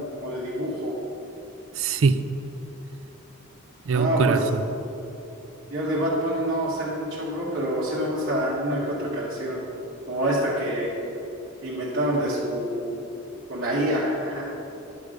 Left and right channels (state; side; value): normal; both; correlation 0.28